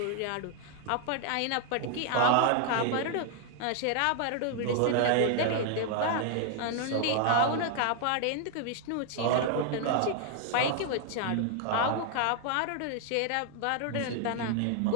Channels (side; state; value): both; different; correlation 0.00